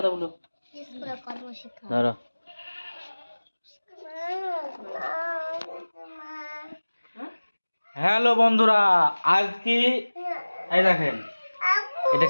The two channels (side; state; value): both; inverted; correlation -1.00